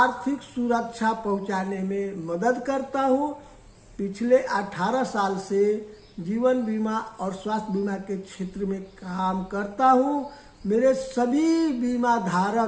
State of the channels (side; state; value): both; identical; correlation 1.00